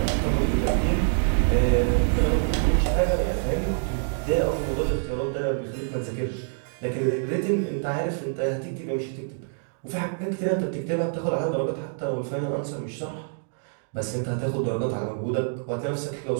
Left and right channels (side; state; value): left; silent; digital silence